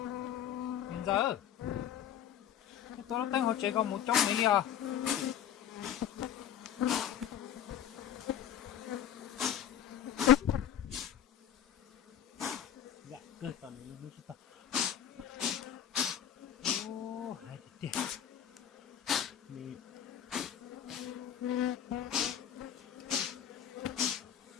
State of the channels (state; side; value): quieter; right; 9.8 dB